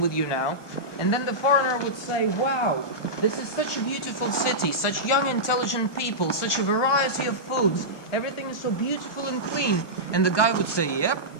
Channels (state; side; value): late; right; 1.2 ms